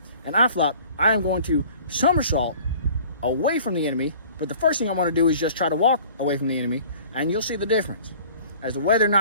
And Flop, I am going to somersault away from the enemy. But the first thing I want to do is just try to walk away from the enemy, and you'll see the difference as to whether or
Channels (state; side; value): inverted; both; correlation -0.48